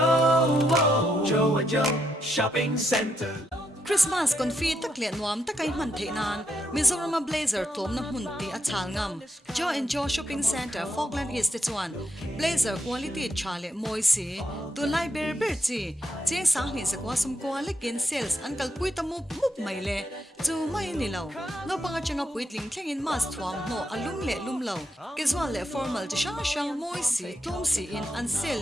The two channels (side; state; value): both; normal; correlation 0.79